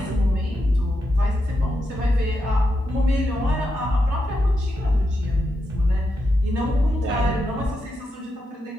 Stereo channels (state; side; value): normal; both; correlation 0.85